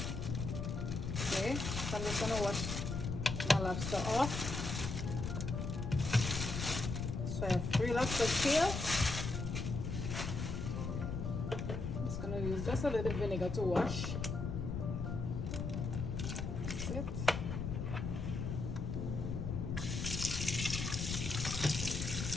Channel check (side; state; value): left; noise; rumble, 3 dB below the sound